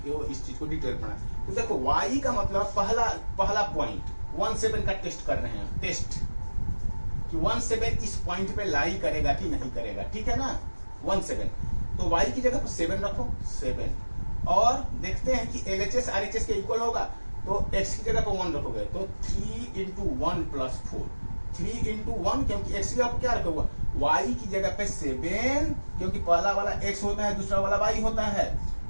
इस चीज को डिटेल पढ़ा। तो देखो y का मतलब पहला पॉइंट 1 7 का टेस्ट कर रहे हैं, टेस्ट कि 1 7 इस पॉइंट पे लाई करेगा कि नहीं करेगा, ठीक है ना। 1 7 तो y की जगह पर 7 रखो, 7, और देखते हैं कि LHS RHS के इक्वल होगा, तो x की जगह पर 1 रखोगे तो 3 × 1 + 4, 3 × 1, क्योंकि x की जगह पर क्या रखोगे, y की जगह पे 7, क्योंकि पहला वाला x होता है, दूसरा वाला y होता है।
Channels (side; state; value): both; inverted; correlation -1.00